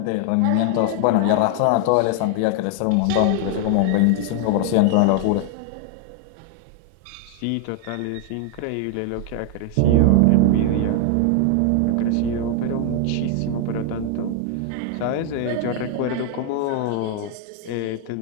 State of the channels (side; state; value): both; different; correlation 0.00